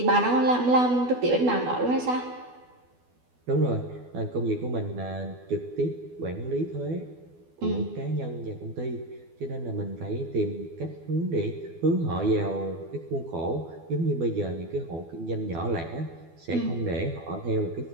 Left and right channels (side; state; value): left; late; 12 ms